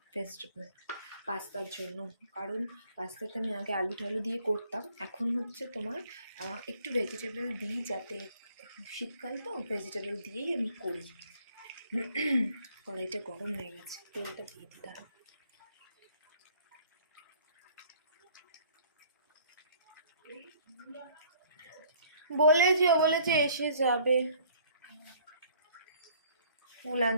ভেজিটেবল পাস্তার জন্য, কারণ পাস্তাটা আমি আগে আলু টালু দিয়ে করতাম, এখন হচ্ছে তোমার একটু ভেজিটেবল দিই, যাতে শীতকাল তো ভেজিটেবল দিয়েই আমি করি। কড়াইটা গরম হয়ে গেছে, তেলটা দিয়ে দিতে হবে। বলেছে এসে যাবে, ফুল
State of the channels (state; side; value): inverted; both; correlation -0.57